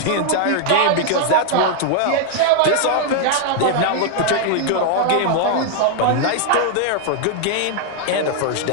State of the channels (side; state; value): both; different; correlation 0.00